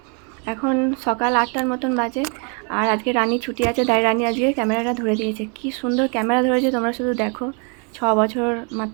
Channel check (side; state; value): left; quieter; 37.6 dB